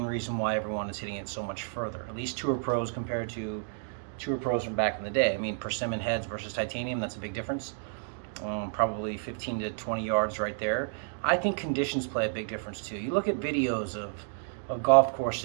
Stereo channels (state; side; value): silent; left; digital silence